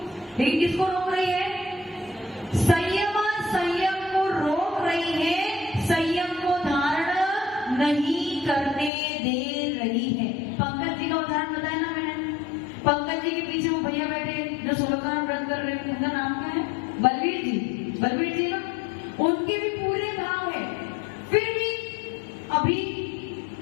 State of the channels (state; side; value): drops out; right; at 8.9 s